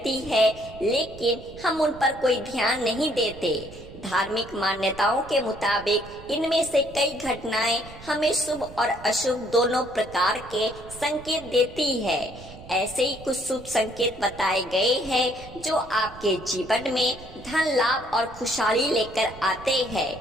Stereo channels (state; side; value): noise; right; rumble, 17 dB below the sound